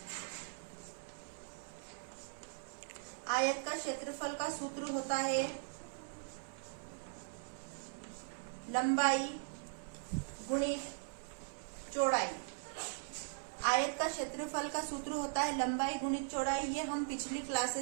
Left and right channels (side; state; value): left; silent; 51 dB below the other